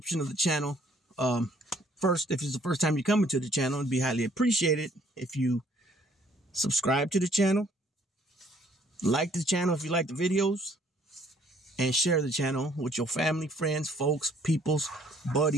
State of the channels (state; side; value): normal; both; correlation 0.62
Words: of the channel. First, if it's the first time you're coming to the channel, it'd be highly appreciated if you subscribe to the channel, like the channel if you like the videos, and share the channel with your family, friends, folks, peoples,